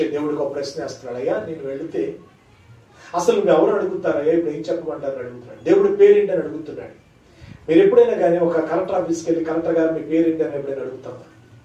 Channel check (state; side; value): identical; both; correlation 1.00